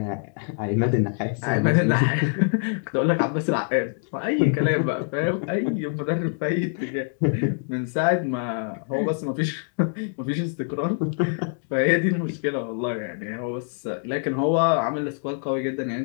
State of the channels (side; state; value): right; silent; 62 dB below the other